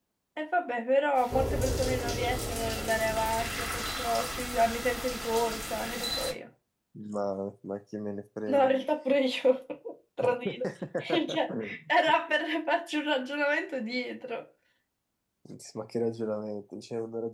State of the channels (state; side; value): identical; both; correlation 1.00